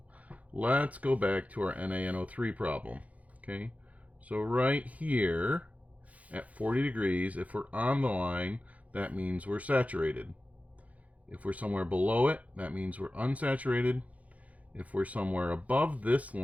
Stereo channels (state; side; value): late; left; 0.069 ms